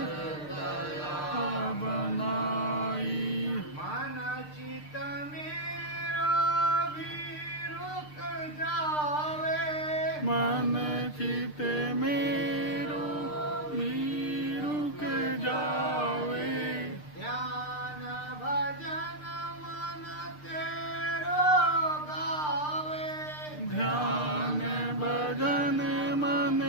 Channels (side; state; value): right; late; 6.6 ms